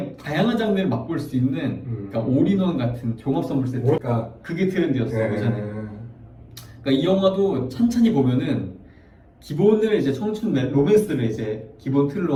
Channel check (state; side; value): identical; both; correlation 1.00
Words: 다양한 장르를 맛볼 수 있는 그러니까 올인원 같은 종합 선물 세트. 그게 트렌드였어요 예전에. 그러니까 이 영화도 찬찬히 보면은 기본을 이제 청춘 로맨스를 이제 기본